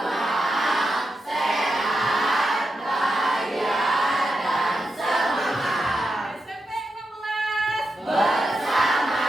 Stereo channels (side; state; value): both; normal; correlation 0.87